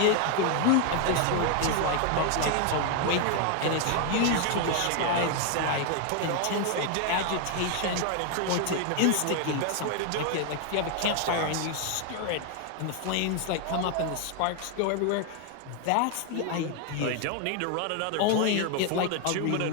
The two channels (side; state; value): both; different; correlation 0.00